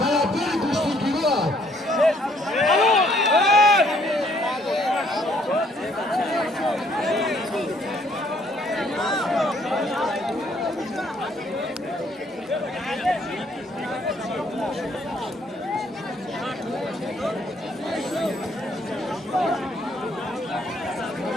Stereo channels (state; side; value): normal; both; correlation 0.65